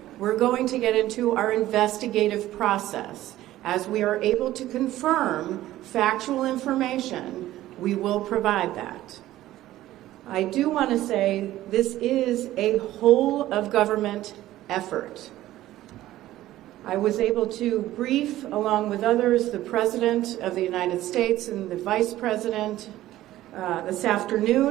We're going to get into our investigative process. As we are able to confirm factual information, we will provide that. I do want to say this is a whole of government effort. I was able to brief, along with others, the President of the United States and the Vice President this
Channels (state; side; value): quieter; left; 14.8 dB